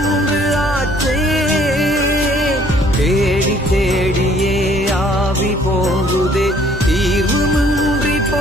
ஆச்சே. தேடி தேடியே ஆவி போகுதே, தீர்வுமின்றி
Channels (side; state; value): both; normal; correlation 0.60